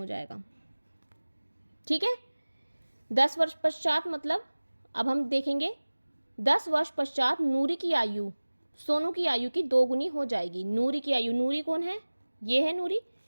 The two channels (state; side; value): inverted; both; correlation -1.00